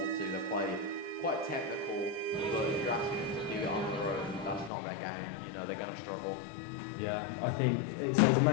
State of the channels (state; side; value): drops out; right; at 4.7 s